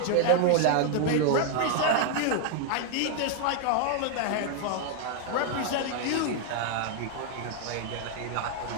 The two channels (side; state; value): both; different; correlation 0.00